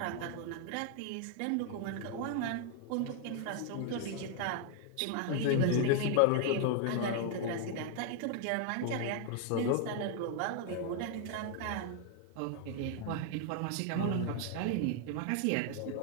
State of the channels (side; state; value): both; different; correlation 0.00